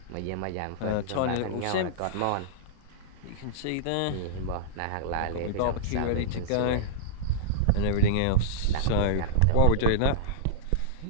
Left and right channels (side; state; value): both; different; correlation -0.03